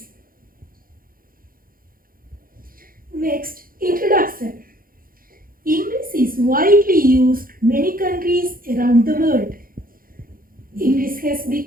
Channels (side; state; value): left; late; 0.42 ms